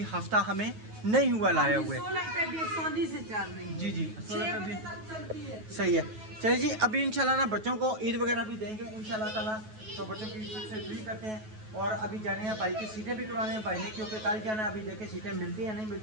हफ्ता हमें नहीं हुआ लाया हुए। 16 पे भी आसानी से चल रही है। जी जी 16 पे भी चलती है। सही है। चलिए जी अभी इंशाल्लाह ना बच्चों को ईद वगैरह भी देंगे इंशाल्लाह ताला, तो बच्चों की ईद से फ्री करते हैं। और अभी जाने हैं भाई की सीटें भी करवाने हैं भाई ने, क्योंकि कल जाना है, अभी देखें सीटें मिलती है नहीं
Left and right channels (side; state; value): left; late; 9.3 ms